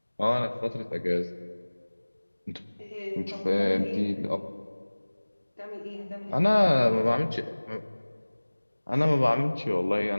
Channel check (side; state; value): both; inverted; correlation -1.00